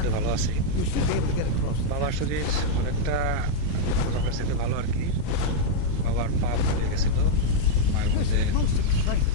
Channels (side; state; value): both; different; correlation -0.02